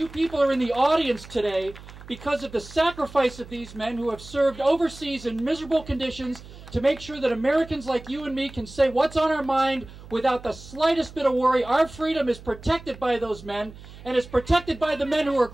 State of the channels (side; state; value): right; noise; hum, 17 dB below the sound